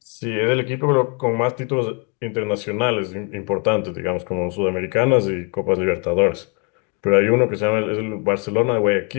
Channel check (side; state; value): right; quieter; 35.1 dB